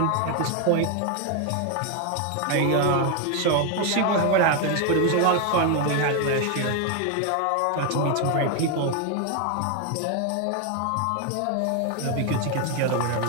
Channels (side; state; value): both; different; correlation 0.01